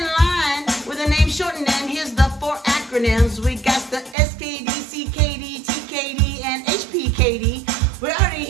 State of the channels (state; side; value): drops out; left; at 4.2 s